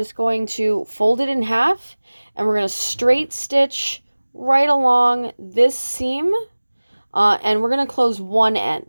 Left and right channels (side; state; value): both; inverted; correlation -1.00